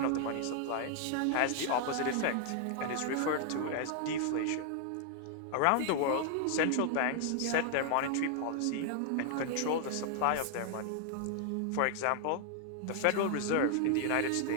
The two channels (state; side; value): different; both; correlation 0.00